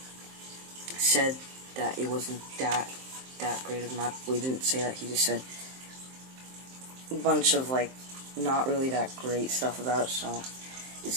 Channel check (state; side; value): late; left; 23 ms